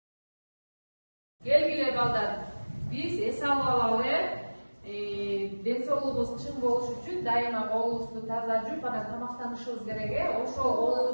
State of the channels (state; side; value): inverted; both; correlation -1.00